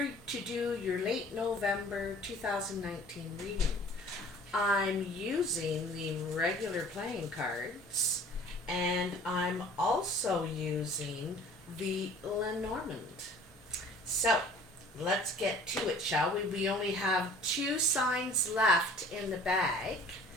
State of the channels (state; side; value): normal; both; correlation 0.49